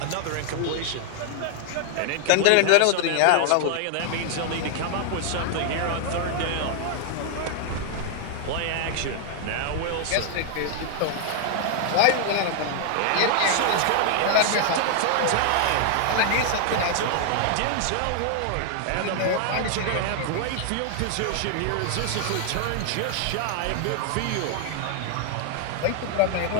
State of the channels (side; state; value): both; different; correlation 0.00